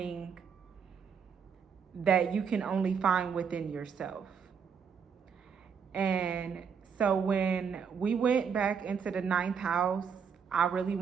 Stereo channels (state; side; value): quieter; left; 6.7 dB